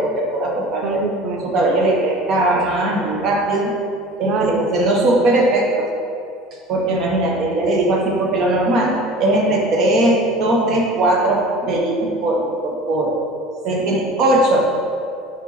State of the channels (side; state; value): both; normal; correlation 0.41